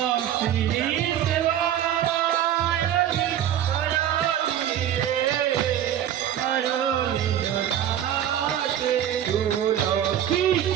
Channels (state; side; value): quieter; left; 10.7 dB